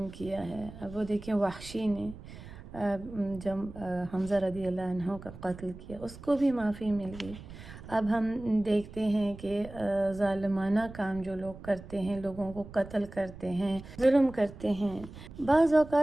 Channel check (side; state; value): right; noise; rumble, 15 dB below the sound